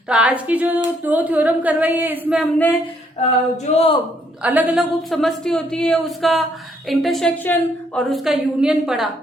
तो आज की जो दो थ्योरम करवाई है इसमें हमने जो अलग अलग उपसमष्टि होती है उसका इंटरसेक्शन और उसका यूनियन पढ़ा।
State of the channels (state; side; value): normal; both; correlation 0.69